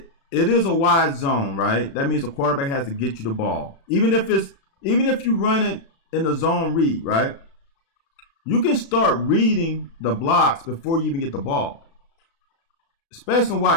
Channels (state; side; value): late; right; 36 ms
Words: is a wide zone, right? That means the quarterback has to get you the ball. Even if you run it in the zone read, right? You can start reading the blocks before you even get the ball. Especially